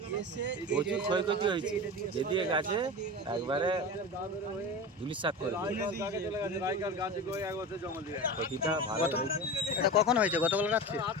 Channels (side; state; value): both; normal; correlation 0.28